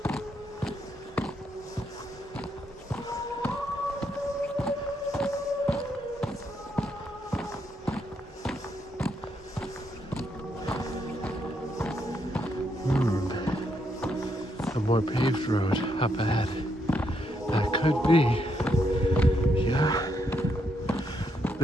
A more paved road up ahead. That could could be. Yeah.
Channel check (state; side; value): normal; both; correlation 0.77